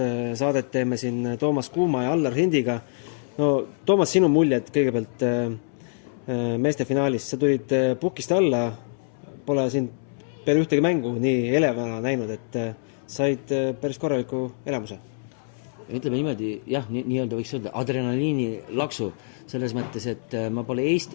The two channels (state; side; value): silent; right; 62 dB below the other